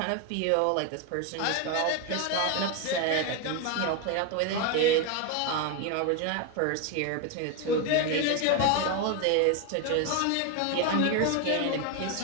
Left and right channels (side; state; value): both; different; correlation 0.01